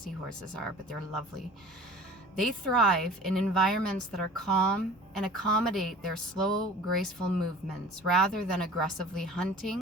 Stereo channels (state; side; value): normal; both; correlation 0.43